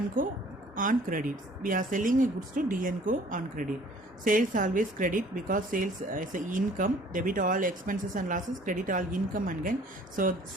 & Co on credit. We are selling goods to D & Co on credit. Sales always credit because sales is a income. Debit all expenses and losses, credit all income and gain. So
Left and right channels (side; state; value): both; normal; correlation 0.54